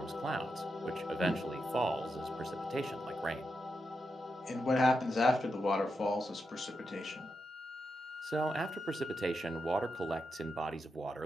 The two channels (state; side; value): normal; both; correlation 0.87